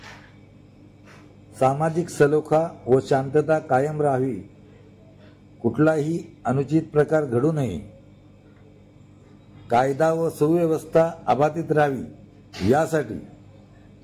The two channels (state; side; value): identical; both; correlation 1.00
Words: सामाजिक सलोखा व शांतता कायम राहावी, कुठलाही अनुचित प्रकार घडू नये, कायदा व सुव्यवस्था अबाधित राहावी यासाठी